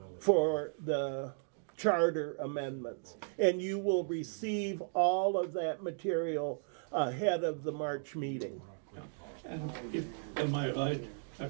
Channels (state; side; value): silent; left; digital silence